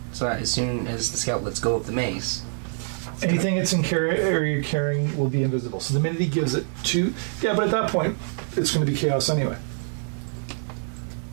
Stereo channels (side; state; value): left; silent; digital silence